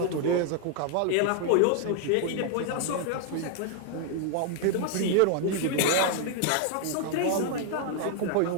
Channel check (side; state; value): both; different; correlation 0.00